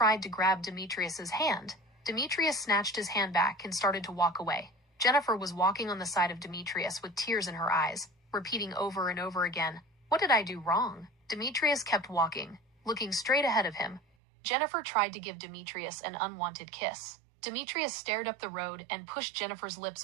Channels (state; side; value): drops out; left; at 14.0 s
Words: to grab Demetrius's hand. Demetrius snatched his hand back and started to walk away. Jennifer was walking on the side of Demetrius with tears in her eyes, repeating over and over again, "What did I do wrong?" Demetrius kept walking, looking straight ahead of him. Jennifer tried to give Demetrius an unwanted kiss. Demetrius stared up the road and pushed Jennifer's lips